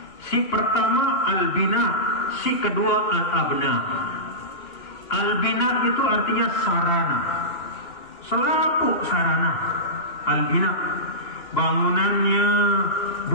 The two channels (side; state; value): right; late; 2.9 ms